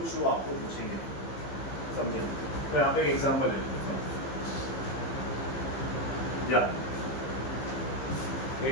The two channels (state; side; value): late; right; 15 ms